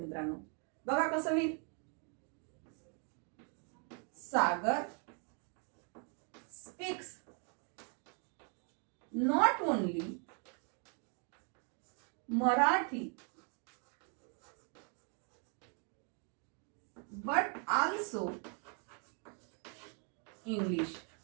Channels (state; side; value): quieter; left; 39.5 dB